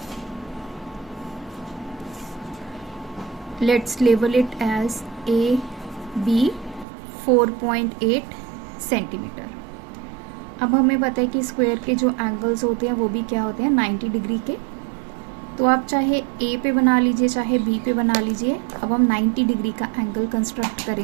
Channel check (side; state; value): left; drops out; at 6.9 s